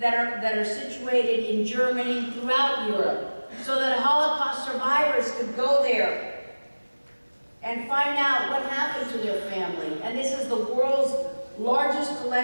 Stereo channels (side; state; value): both; inverted; correlation -1.00